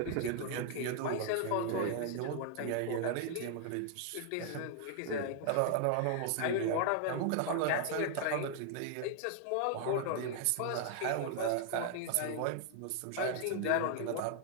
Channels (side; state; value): both; different; correlation 0.00